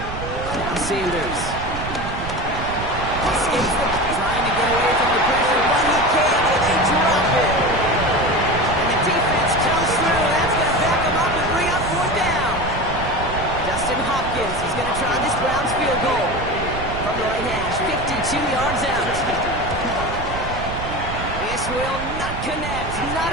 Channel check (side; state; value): right; noise; rumble, 8 dB below the sound